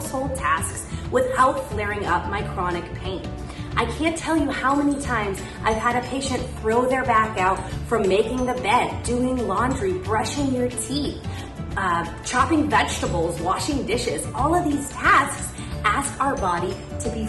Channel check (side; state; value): both; identical; correlation 1.00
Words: tasks without flaring up my chronic pain. I can't tell you how many times I've had a patient throw their back out from making the bed, doing laundry, brushing your teeth, chopping vegetables, washing dishes. All of these tasks ask our body to be